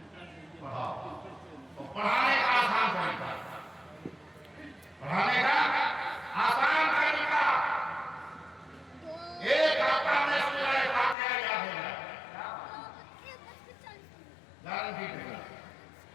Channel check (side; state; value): right; drops out; at 11.2 s